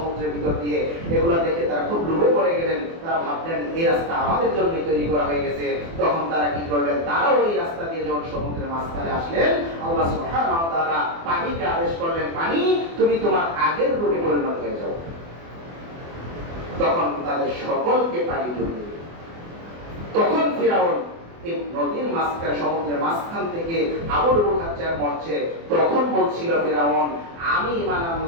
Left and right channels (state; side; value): late; left; 24 ms